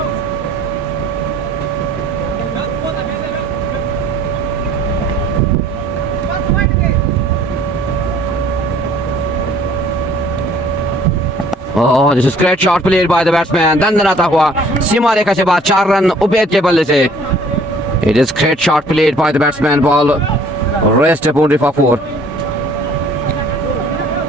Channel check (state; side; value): normal; both; correlation 0.55